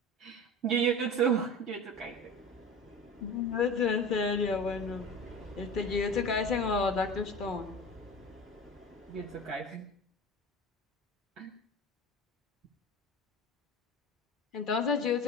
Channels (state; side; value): normal; both; correlation 0.33